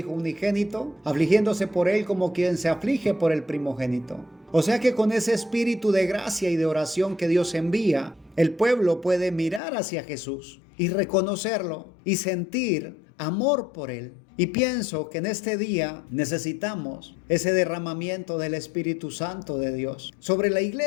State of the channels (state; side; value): drops out; right; at 9.6 s